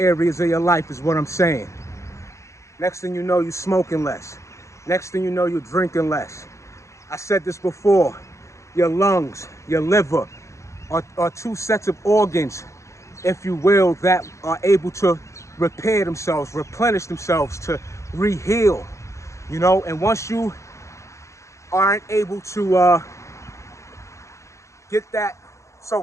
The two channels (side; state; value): right; late; 0.14 ms